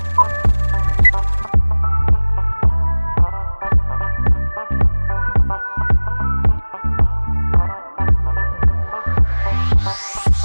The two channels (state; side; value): inverted; both; correlation -1.00